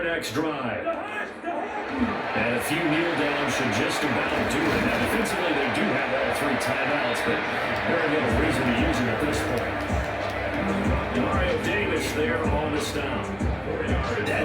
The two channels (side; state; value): both; identical; correlation 1.00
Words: next drive. And a few kneel downs should just about do it. Now, defensively, they do have all 3 timeouts, but very little reason to use them at this point. Mario Davis there on the stop.